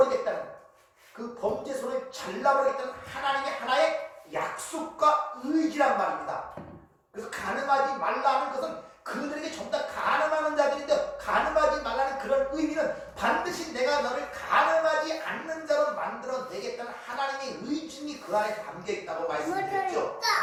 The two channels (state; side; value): identical; both; correlation 1.00